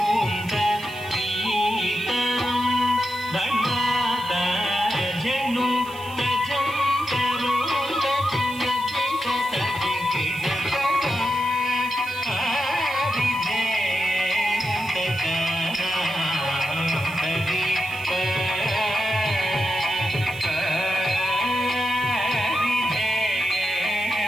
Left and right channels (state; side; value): noise; right; hiss, 20 dB below the sound